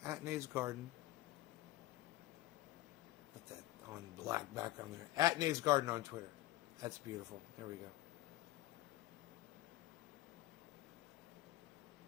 At Nays Garden. Put that on black background there. At Nays Garden on Twitter. That's beautiful. There we go.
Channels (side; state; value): right; quieter; 16.2 dB